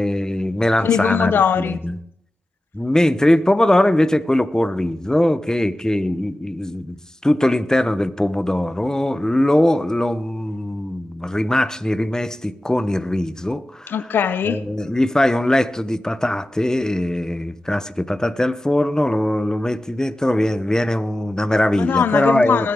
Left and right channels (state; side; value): normal; both; correlation 0.94